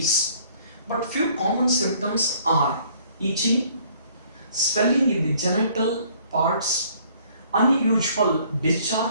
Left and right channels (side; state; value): both; inverted; correlation -0.59